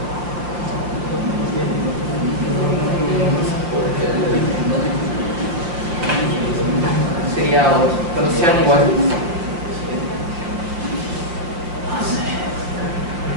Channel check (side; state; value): left; late; 6.0 ms